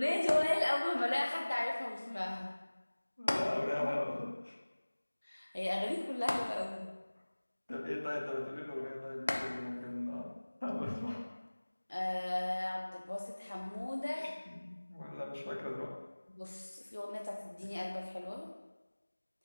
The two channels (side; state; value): both; inverted; correlation -1.00